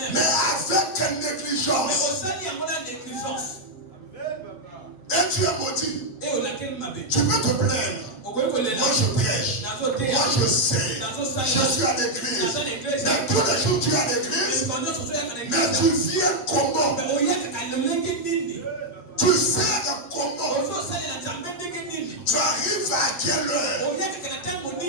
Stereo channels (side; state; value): right; late; 8.5 ms